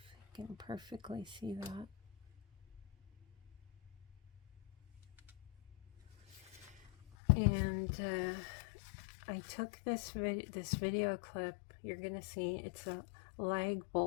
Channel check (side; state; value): right; drops out; at 7.1 s